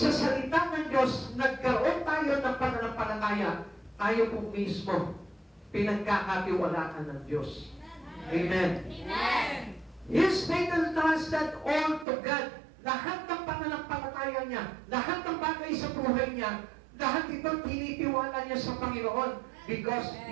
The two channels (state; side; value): drops out; left; at 12.1 s